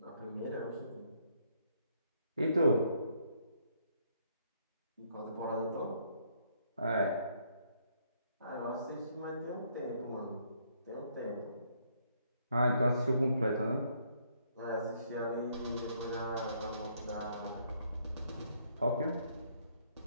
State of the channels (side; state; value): both; inverted; correlation -0.69